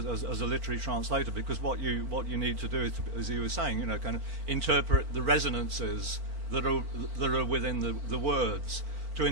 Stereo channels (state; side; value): late; left; 4.5 ms